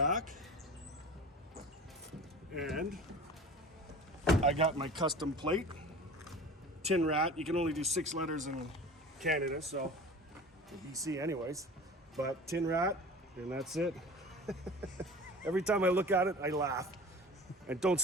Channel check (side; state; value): both; normal; correlation 0.38